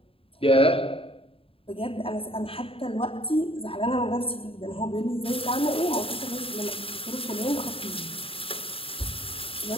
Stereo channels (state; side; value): late; right; 0.27 ms